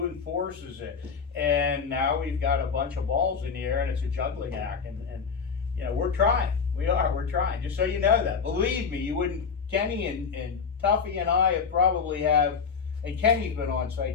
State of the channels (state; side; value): quieter; right; 5.9 dB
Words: enforces it? And now we've got a bunch of balls in the air, and it's a juggling act, and you know, we're trying, we're trying, just so you know that, believe me, you wouldn't, Kenny and Tuffy and I and Kenny's been on